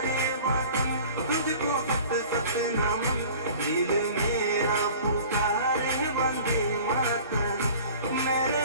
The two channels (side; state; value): both; inverted; correlation -0.45